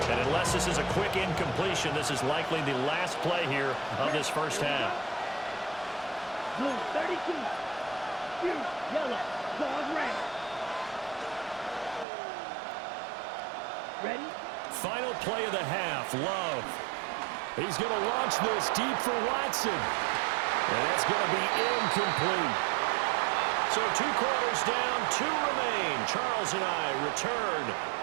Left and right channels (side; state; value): left; drops out; at 12.1 s